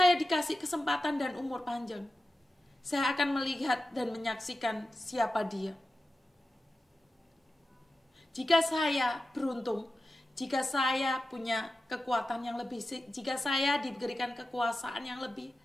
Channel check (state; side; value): normal; both; correlation 0.93